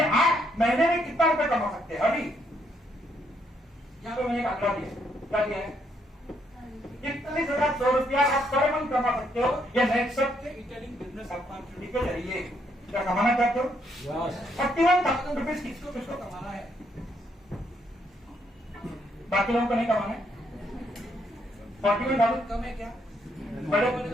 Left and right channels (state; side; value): normal; both; correlation 0.73